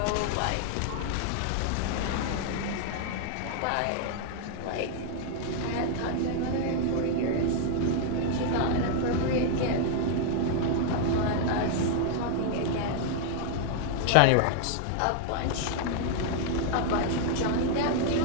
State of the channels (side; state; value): both; different; correlation 0.00